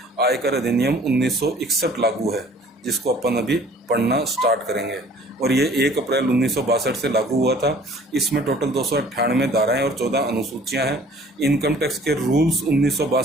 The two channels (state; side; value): normal; both; correlation 0.52